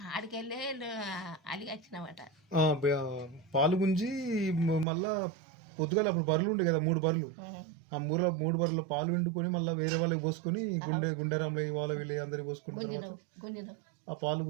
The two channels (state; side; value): drops out; left; at 4.9 s